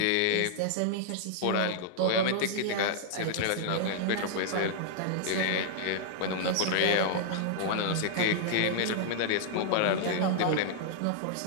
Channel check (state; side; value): different; both; correlation -0.01